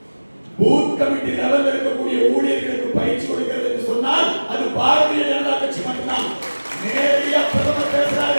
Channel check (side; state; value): both; inverted; correlation -1.00